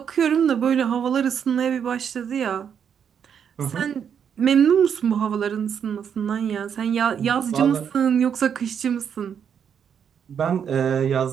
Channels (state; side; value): quieter; left; 7.8 dB